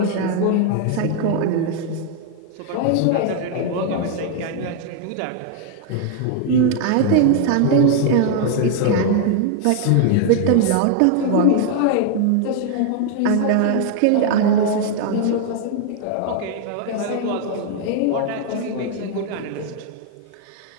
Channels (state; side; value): different; both; correlation 0.00